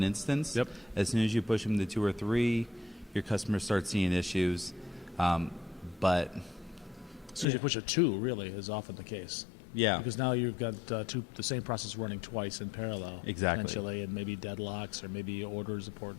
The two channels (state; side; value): drops out; right; at 7.5 s